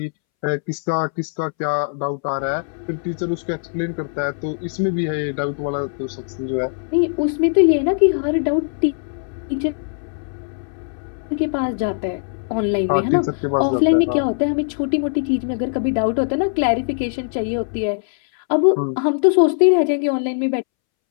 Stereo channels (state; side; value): silent; right; 65 dB below the other